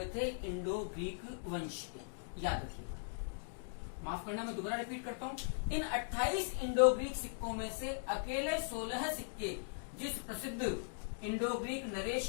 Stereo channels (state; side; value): silent; right; digital silence